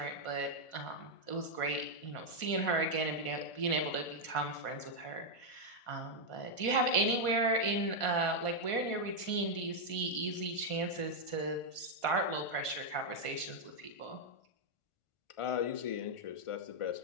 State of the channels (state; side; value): late; right; 1.4 ms